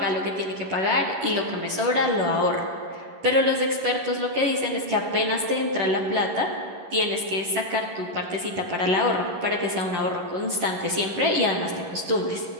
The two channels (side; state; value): left; late; 11 ms